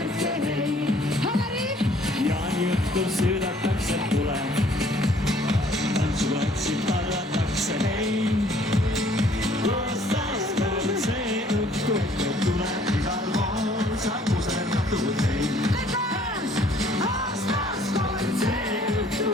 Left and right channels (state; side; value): normal; both; correlation 0.59